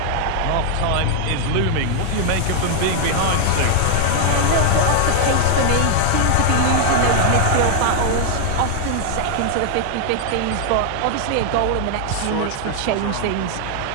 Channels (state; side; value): different; both; correlation 0.00